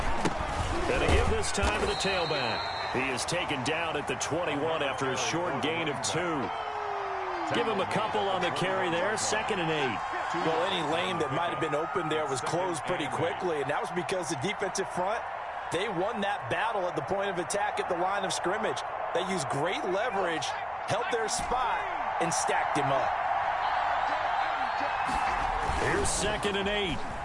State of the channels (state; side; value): identical; both; correlation 1.00